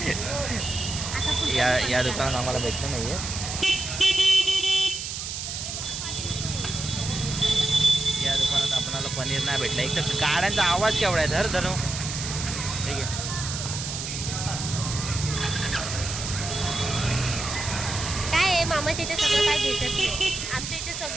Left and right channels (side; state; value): right; noise; hiss, 5 dB below the sound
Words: आता कुठे या दुकानात आम्हाला भेटलं नाही आहे. या दुकानात आपल्याला पनीर नाही भेटलं. एक तर गाड्यांचा आवाज केवढा आहे. धर धरू ठीक आहे. काय आहे मामाच्या इथे सगळं काय भेटत नाही. आमच्या इथे